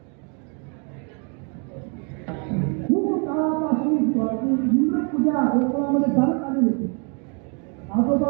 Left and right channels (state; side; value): quieter; left; 36.7 dB